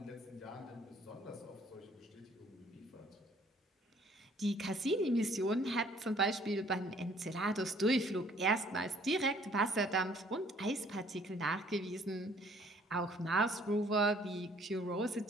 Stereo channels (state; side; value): normal; both; correlation 0.59